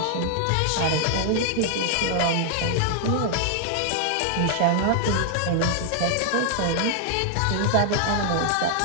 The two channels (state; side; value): different; both; correlation 0.00